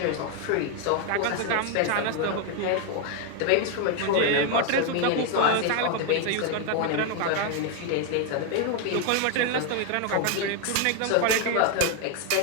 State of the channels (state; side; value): different; both; correlation 0.01